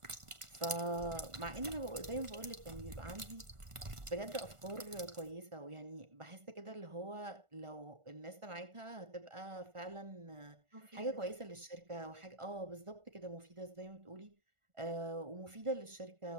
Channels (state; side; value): late; left; 1.4 ms